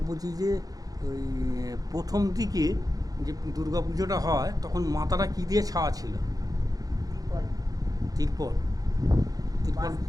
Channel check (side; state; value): left; late; 0.18 ms